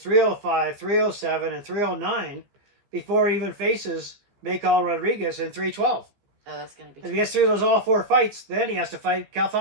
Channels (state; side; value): late; left; 15 ms